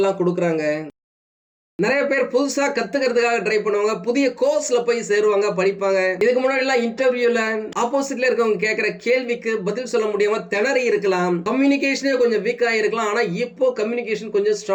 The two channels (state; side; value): identical; both; correlation 1.00